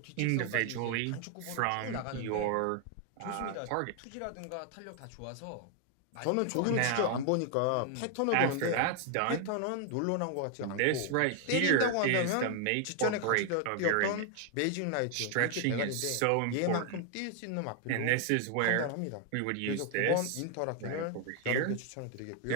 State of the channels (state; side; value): different; both; correlation 0.00